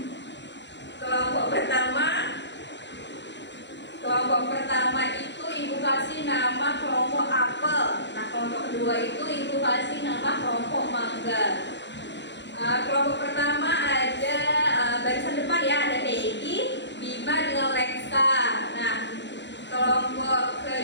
Kelompok pertama itu ibu kasih nama kelompok apel. Nah, kelompok kedua itu ibu kasih nama kelompok mangga. Kelompok pertama ada barisan depan ya, ada Peggy, Bima dengan Lexa. Nah, kelompok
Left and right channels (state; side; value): late; right; 0.52 ms